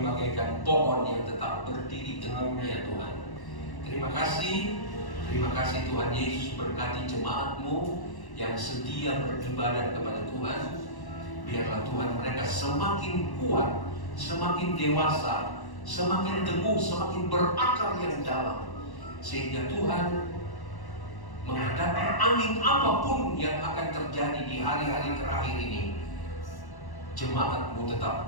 pohon yang tetap berdiri teguhnya Tuhan. Terima kasih Tuhan Yesus, berkati jemaat-Mu yang setia beribadah kepada Tuhan. Biarlah Tuhan mereka semakin kuat, semakin dewasa, semakin teguh, semakin berakar yang dalam, sehingga Tuhan menghadapi angin apapun yang akan terjadi di hari-hari terakhir ini, jemaat-Mu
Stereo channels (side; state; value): right; late; 1.1 ms